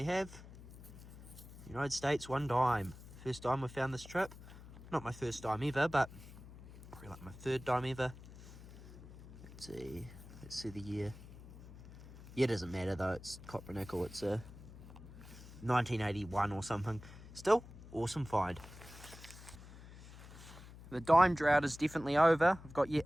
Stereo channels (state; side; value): noise; left; hum, 16 dB below the sound